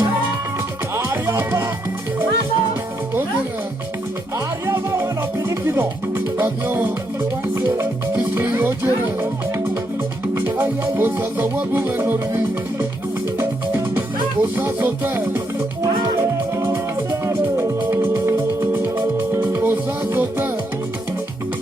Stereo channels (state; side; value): normal; both; correlation 0.78